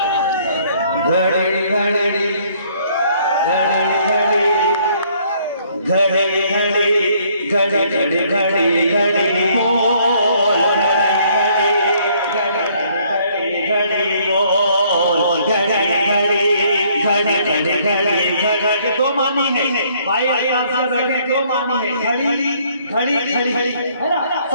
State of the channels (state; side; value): inverted; both; correlation -0.64